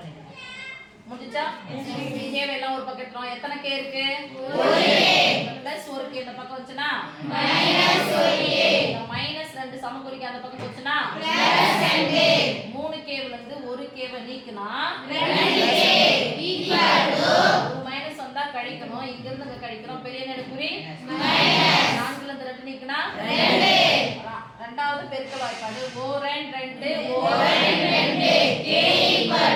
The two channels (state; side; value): identical; both; correlation 1.00